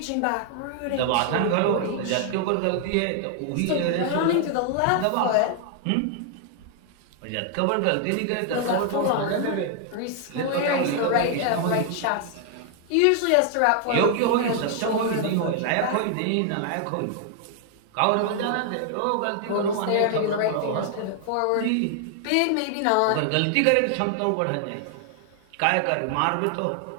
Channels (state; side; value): different; both; correlation 0.00